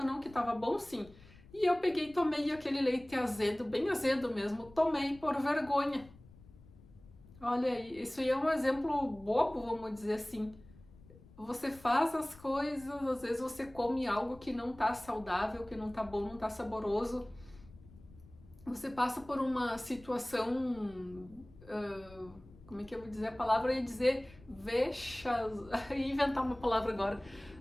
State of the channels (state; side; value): noise; left; rumble, 22 dB below the sound